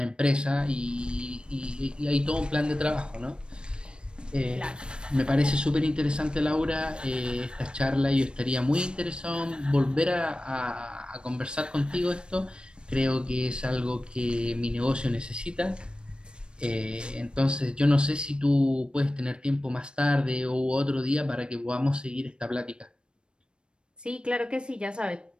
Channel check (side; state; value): left; late; 0.054 ms